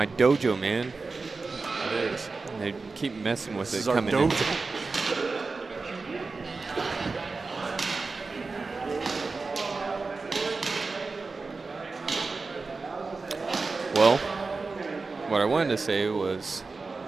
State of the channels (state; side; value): quieter; left; 4.0 dB